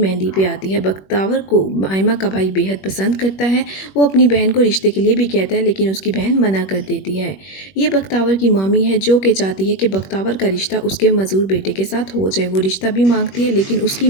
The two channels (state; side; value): late; right; 21 ms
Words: पे आती है। बख्तावर को आयमा का भाई बेहद पसंद करता है। वो अपनी बहन को रिश्ते के लिए भी कहता है, लेकिन उसकी बहन मना कर देती है। ये बख्तावर की मामी है जो कि चाहती है कि बख्तावर का रिश्ता उसके मजदूर बेटे के साथ हो जाए। वो रिश्ता भी मांगती है, लेकिन उसकी